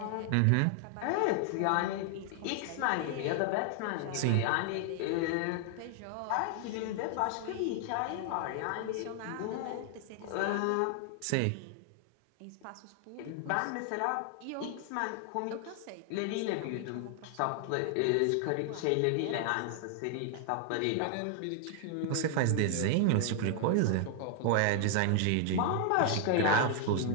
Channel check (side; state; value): both; different; correlation 0.00